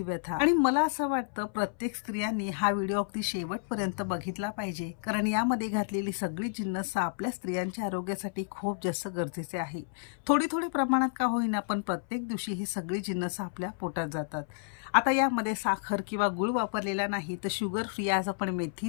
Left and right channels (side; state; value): right; silent; 57 dB below the other